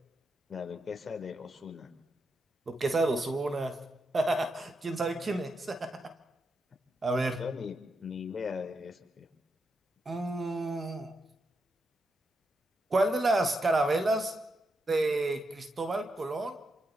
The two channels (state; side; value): normal; both; correlation 0.84